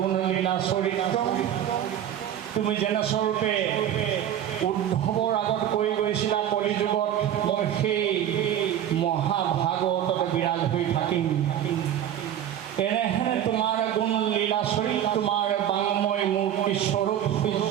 চৰিত্ৰ তুমি যেনেস্বৰূপে উদ্ধৱৰ আগত কৈ গৈছিলা কলিযুগত মই সেই মহাভাগৱতত বিৰাজ হৈ থাকিম এনে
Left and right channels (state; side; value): quieter; left; 10.6 dB